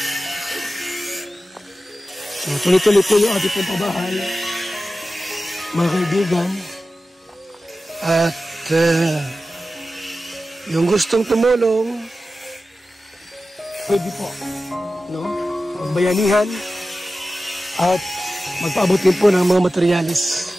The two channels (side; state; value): both; normal; correlation 0.94